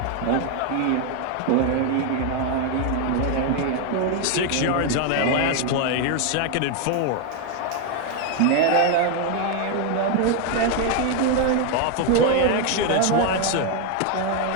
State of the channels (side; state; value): both; different; correlation 0.01